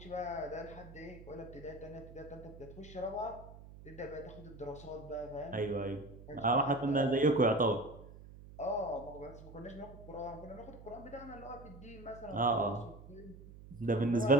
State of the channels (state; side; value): noise; right; hum, 17 dB below the sound